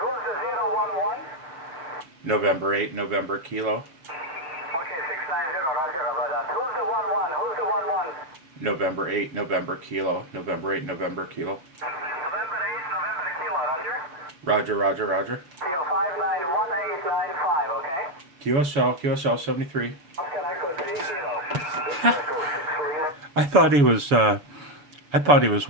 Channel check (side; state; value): left; late; 7.0 ms